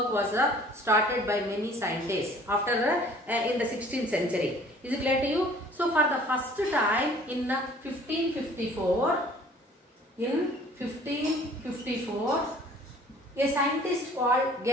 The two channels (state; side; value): normal; both; correlation 0.52